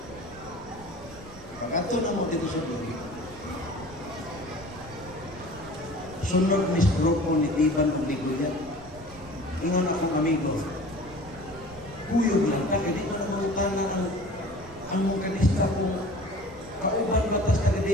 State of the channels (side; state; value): right; noise; rumble, 19 dB below the sound